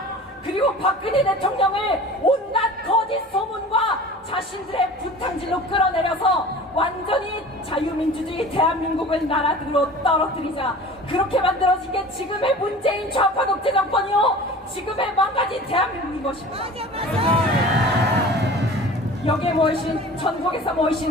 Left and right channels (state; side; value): normal; both; correlation 0.41